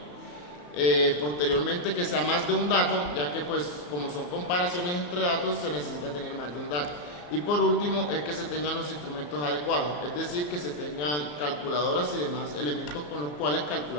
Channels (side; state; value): right; late; 34 ms